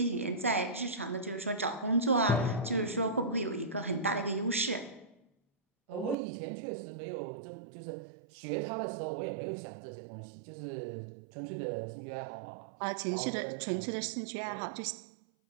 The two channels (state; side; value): drops out; left; at 6.2 s